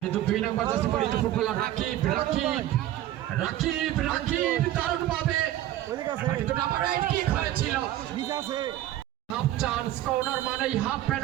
কিন্তু 2 নম্বর জার্সি পরিহিত ফুটবলার রাকিব রাকিব রাকিব রাকিব দারুণ ভাবে কিন্তু নাম্বার 8 কিক হয়েছিল হাফ চান্স কর্নার মানেই হাফ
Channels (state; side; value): quieter; left; 13.7 dB